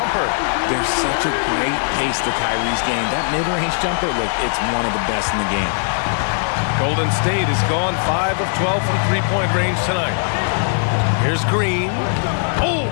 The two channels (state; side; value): silent; right; digital silence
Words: There's such a great pace to Kyrie's game. That mid-range jumper, look, it's one of the best in the game. Golden State has gone 5 of 12 from three-point range tonight. Here's Green. Oh,